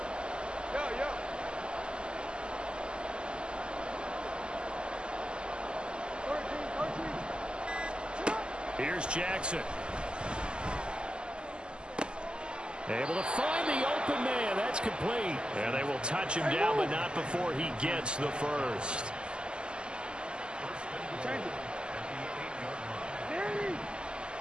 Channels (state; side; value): late; left; 0.049 ms